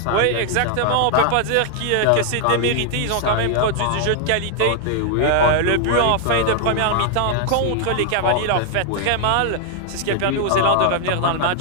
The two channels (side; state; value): both; different; correlation -0.01